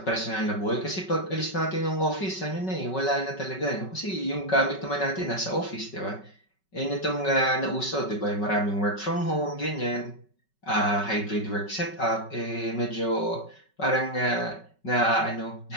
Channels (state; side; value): late; right; 5.3 ms